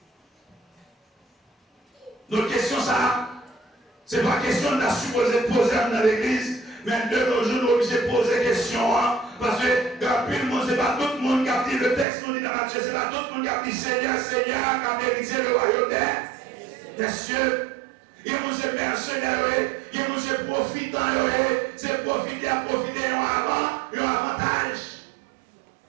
Notre question, ça, c'est pas question de la supposer poser dans l'église, mais de nos jours, nous sommes obligés de poser question, hein, parce que dans le monde, c'est pas tout le monde qui a dit le texte, nous dit dans Matthieu, c'est pas tout le monde qui a dit Seigneur, Seigneur, qui a mérité le royaume des cieux. Il y a des mercenaires, il y a des profitants, c'est profiter à profiter un avantage.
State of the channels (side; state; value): left; drops out; at 12.1 s